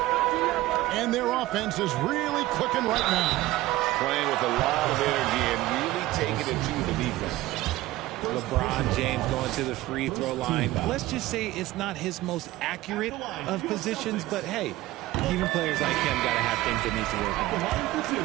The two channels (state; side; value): quieter; left; 17.2 dB